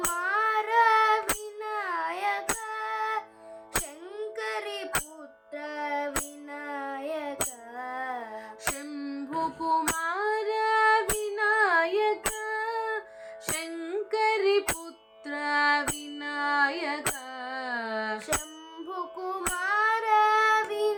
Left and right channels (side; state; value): both; identical; correlation 1.00